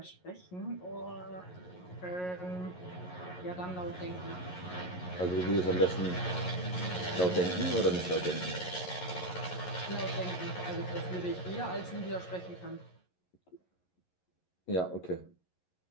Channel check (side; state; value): right; late; 11 ms